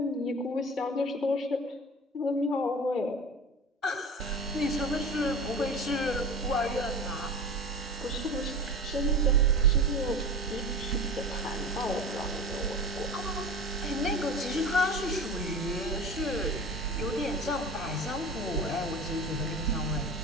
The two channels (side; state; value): both; normal; correlation 0.33